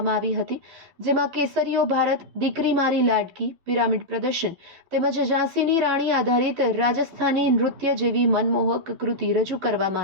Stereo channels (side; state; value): left; late; 11 ms